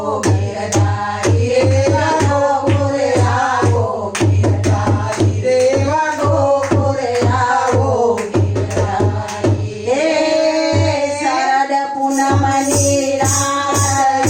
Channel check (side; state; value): both; identical; correlation 1.00